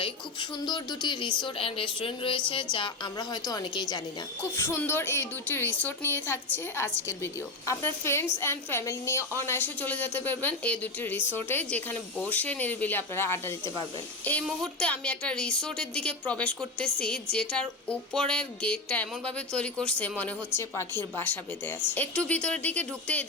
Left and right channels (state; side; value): quieter; right; 3.1 dB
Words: খুব সুন্দর দুটি রিসোর্ট অ্যান্ড রেস্টুরেন্ট রয়েছে, যা আমরা হয়তো অনেকেই জানি না। খুব সুন্দর এই দুটি রিসোর্ট নিয়ে থাকছে আজকের ভিডিও। আপনার ফ্রেন্ডস অ্যান্ড ফ্যামিলি নিয়ে অনায়াসে চলে যেতে পারবেন এই দুটি রিসোর্টে, যেখানে বসে নিরিবিলি আপনারা আড্ডা দিতে পারবেন। এই মুহূর্তে আমি একটা রিসোর্টের দিকে প্রবেশ করতেছি, যেটার উপরের গেটটা এমনভাবে তৈরি করছে মনে হচ্ছে পাখির বাসা বেঁধে আছে। একটু ভিতরের দিকে ঢুকতেই